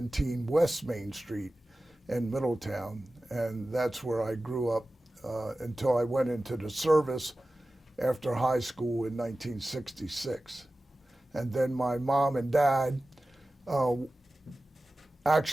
West Main Street in Middletown. And that's where I grew up until I went into the service after high school in 1966. And then my mom and dad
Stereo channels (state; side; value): normal; both; correlation 0.95